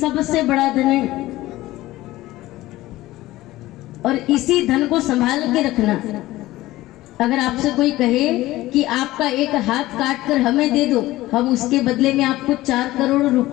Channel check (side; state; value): right; quieter; 17.0 dB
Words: बड़ा धन है। और इसी धन को संभाल के रखना। अगर आपसे कोई कहे कि आपका एक हाथ काट कर हमें दे दो, हम उसके बदले में आपको 4 करोड़